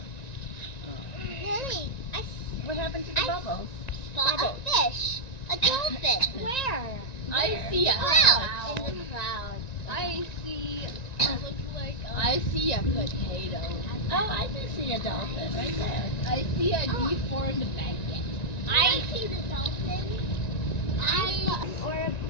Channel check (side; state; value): right; late; 1.9 ms